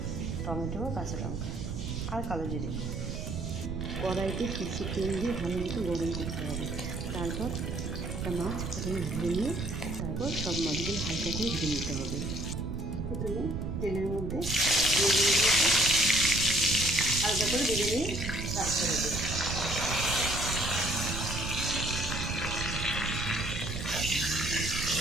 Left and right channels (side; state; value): right; noise; rumble, 4 dB below the sound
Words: টমেটো, কাঁচা লঙ্কা আর কালো জিরে। কড়াইতে কিছু তেল দিয়ে ভালো মতো গরম করতে হবে। তারপর একটা মাছ প্রথমে ধরে নিয়ে তারপর সব মাছগুলো হালকা করে ভেজে নিতে হবে। প্রথমে তেলের মধ্যে হালকা করে ভেজে নিয়ে রাখতে হবে।